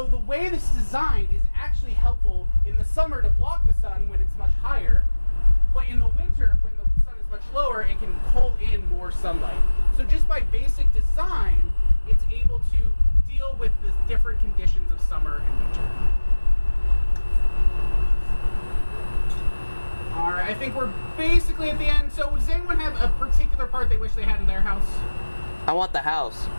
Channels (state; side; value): inverted; both; correlation -1.00